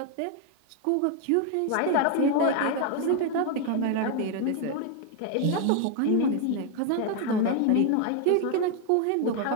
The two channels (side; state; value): both; different; correlation 0.00